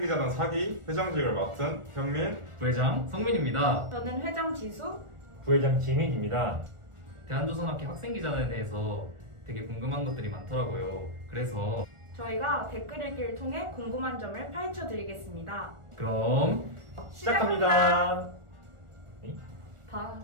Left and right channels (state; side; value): late; left; 1.4 ms